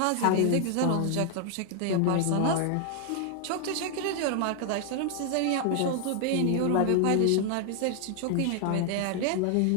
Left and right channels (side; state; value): both; different; correlation 0.00